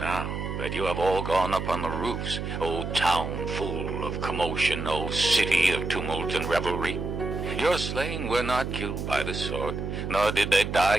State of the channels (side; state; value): right; noise; hum, 4 dB below the sound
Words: that you have all gone up on the roofs, O town full of commotion, O city of tumult and revelry? Your slain were not killed by the sword, nor did they